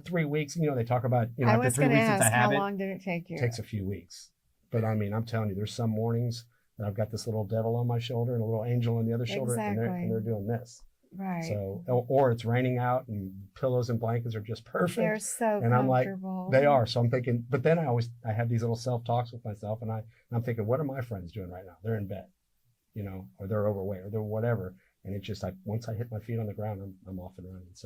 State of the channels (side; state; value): both; identical; correlation 1.00